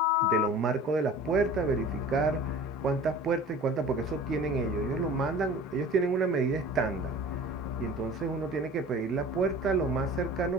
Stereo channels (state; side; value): normal; both; correlation 0.42